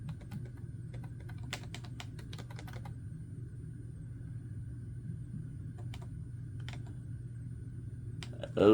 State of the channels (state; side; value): identical; both; correlation 1.00